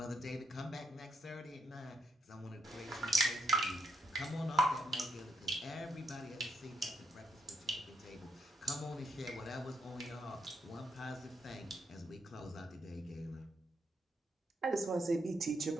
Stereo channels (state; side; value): normal; both; correlation 0.78